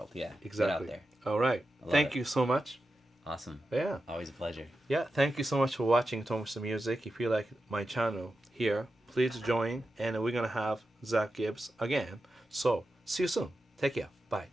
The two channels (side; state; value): both; normal; correlation 0.91